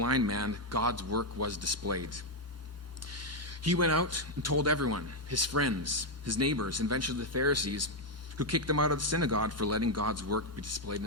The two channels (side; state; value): both; normal; correlation 0.01